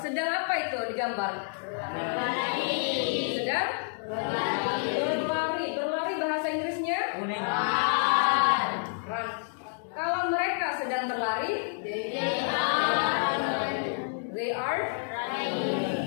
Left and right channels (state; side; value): silent; right; digital silence